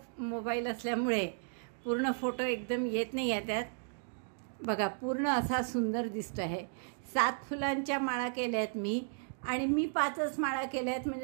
मोबाईल असल्यामुळे पूर्ण फोटो एकदम येत नाही आहे त्यात। बघा, पूर्ण असा सुंदर दिसतो आहे। 7 फुलांच्या माळा केल्या आहेत मी, आणि मी 5च माळा केल्या आहेत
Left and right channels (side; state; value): left; silent; digital silence